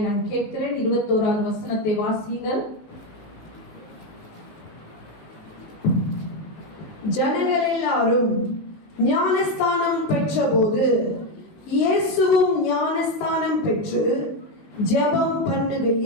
நான் கேட்கிறேன். 21வது வசனத்தை வாசிங்கள். ஜனங்கள் எல்லாரும் ஞானஸ்தானம் பெற்றபோது இயேசுவும் ஞானஸ்தானம் பெற்று ஜெபம்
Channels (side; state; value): right; late; 19 ms